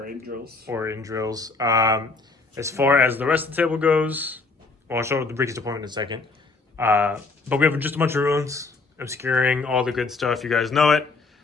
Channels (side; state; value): right; quieter; 3.9 dB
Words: in drills. Or in drills. As far as the rest of the table goes, well, I'll show the Ricky's deployment in a second. But we have just a bunch of ruins, obscuring all the good stuff. You guys know it.